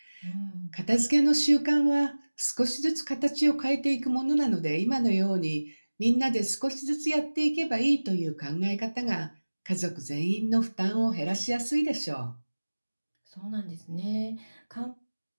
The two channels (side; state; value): both; inverted; correlation -1.00